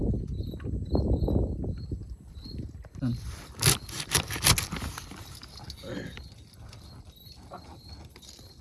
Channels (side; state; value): both; identical; correlation 1.00